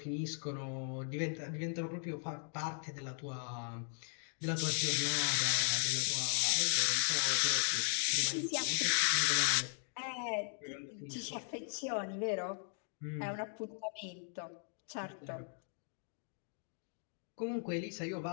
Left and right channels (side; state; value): right; silent; 53 dB below the other